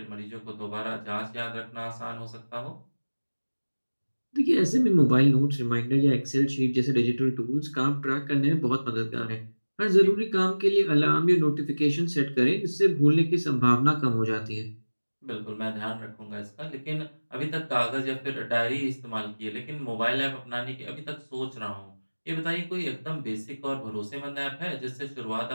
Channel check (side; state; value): both; inverted; correlation -1.00